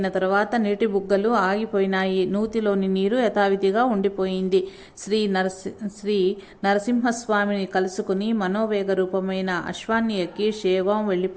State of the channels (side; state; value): both; identical; correlation 1.00